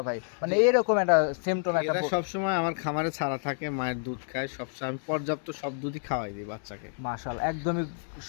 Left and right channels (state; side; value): silent; right; digital silence